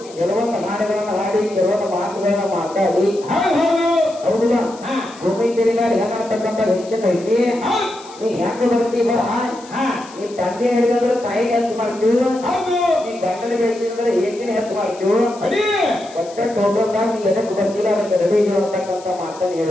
ಕೆಲವೊಂದು ಹಾಡುಗಳನ್ನ ಹಾಡಿ ಕೆಲವೊಂದು ಮಾತುಗಳನ್ನ ಮಾತಾಡಿ ಹೌದಲ್ಲ ಭೂಮಿ ತೆರಿಗಾಡಿ ಹೆಂಗಾಡ್ತಕ್ಕಂಥ ಹೆಚ್ಚಿನ ಐತಿ ನೀ ಹೆಂಗ ಬರ್ತೀವ ನೀ ತಂದೆ ಹಿಡಿದ್ರೆ ತಾಯಿ ಹೆಚ್ಚು ಮಾಡ್ತೀವಿ ನೀ ಗಂಡನ ಬೇಸಿದ್ರೆ ಏಕಿನ ಹೆಚ್ಚು ಮಾಡ್ತೀವಿ ಒಟ್ಟ ಟೋಟಲ್ದಾಗ ನೀ ಎದಕ್ಕೆ ಬರ್ತಿಲ್ಲ ಅದಕ್ಕೆ ರೆಡಿ ಅಂತಕ್ಕಂಥ ಮಾತನ್ನು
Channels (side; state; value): left; noise; hiss, 21 dB below the sound